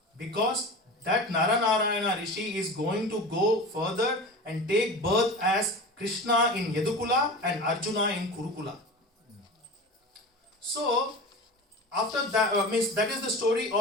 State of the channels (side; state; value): both; normal; correlation 0.32